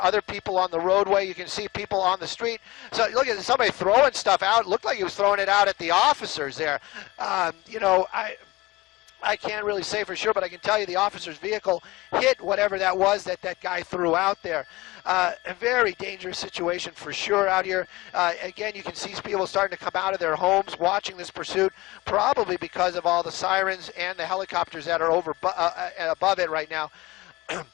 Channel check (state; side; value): quieter; right; 20.8 dB